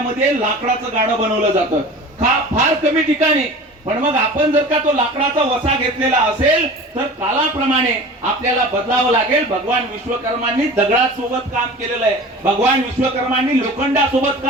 लाकडाचं गाडं बनवलं जातं. फार कमी ठिकाणी. पण मग आपण जर का तो लाकडाचा वसा घेतलेला असेल तर कालाप्रमाणे आपल्याला बदलावं लागेल. भगवान विश्वकर्मांनी दगडासोबत काम केलेलं आहे, भगवान विश्वकर्मांनी लोखंडासोबत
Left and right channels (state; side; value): normal; both; correlation 0.38